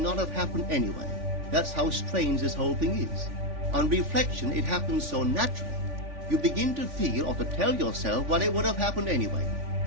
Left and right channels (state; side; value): late; left; 3.5 ms